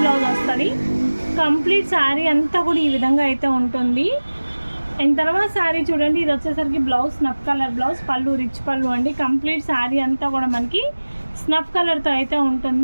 బ్లౌజ్ వస్తుంది. కంప్లీట్ శారీ అంతా కూడా ఈ విధంగా అయితే ఉంటుంది. అండ్ తర్వాత శారీ చూడండి ఇది వచ్చేసరికి బ్లౌజ్ స్నఫ్ కలర్ బ్లౌజ్. పళ్ళు రిచ్ పళ్ళు అండి. కంప్లీట్ శారీ అంతా కూడా మనకి స్నఫ్ కలర్తో అయితే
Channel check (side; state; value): both; inverted; correlation -1.00